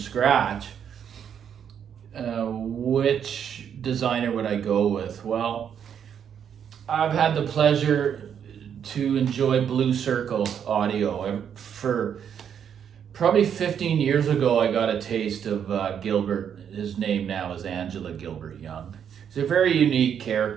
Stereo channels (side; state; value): left; quieter; 8.3 dB